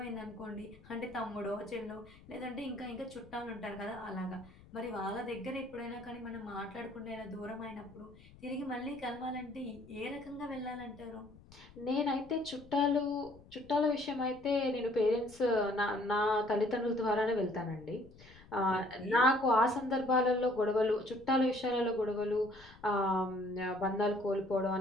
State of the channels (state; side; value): noise; left; rumble, 22 dB below the sound